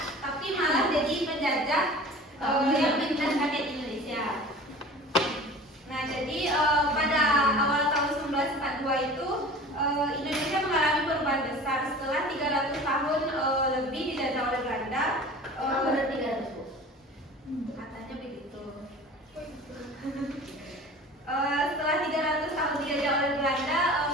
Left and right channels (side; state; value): both; normal; correlation 0.40